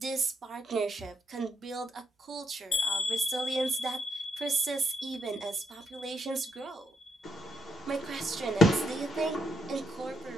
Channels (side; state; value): both; normal; correlation 0.76